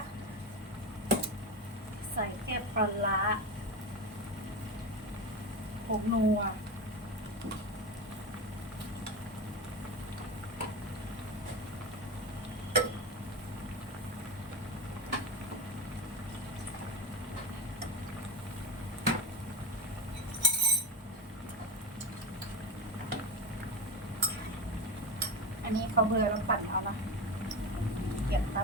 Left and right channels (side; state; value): both; normal; correlation 0.23